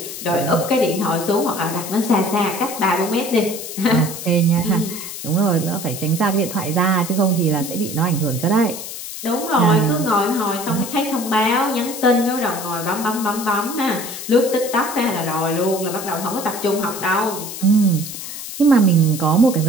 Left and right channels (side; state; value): left; noise; hiss, 9 dB below the sound